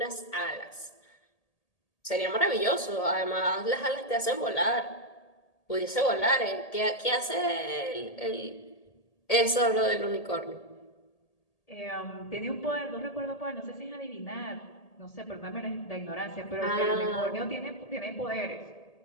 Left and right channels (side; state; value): right; late; 1.8 ms